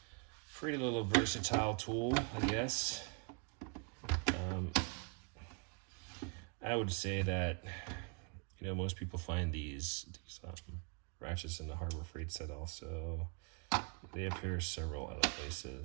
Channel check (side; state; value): left; quieter; 35.1 dB